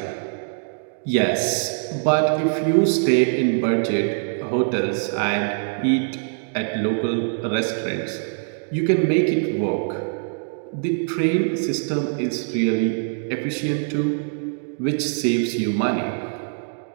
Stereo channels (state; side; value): silent; left; digital silence